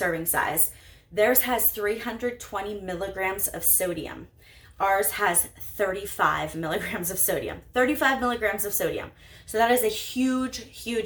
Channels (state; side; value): identical; both; correlation 1.00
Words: size. Theirs has 320 milligrams of sodium. Ours has 35 milligrams of sodium. 35 milligrams of sodium. So that is a huge,